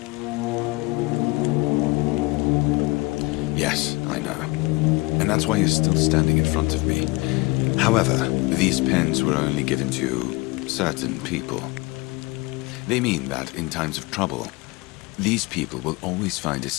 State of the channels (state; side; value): quieter; right; 24.1 dB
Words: Yes, I know. And that's why you're still standing in front of me. However, these pens were only given to certain people. They mean that in times of trouble, these people will always find a